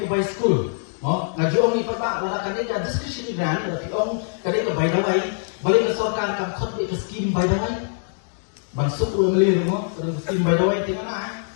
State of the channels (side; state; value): right; silent; digital silence